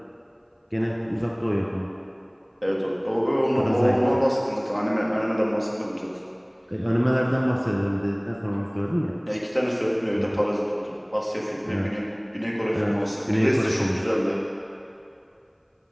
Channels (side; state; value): both; identical; correlation 1.00